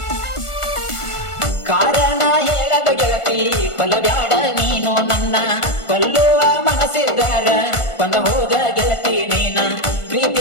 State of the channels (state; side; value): late; right; 1.5 ms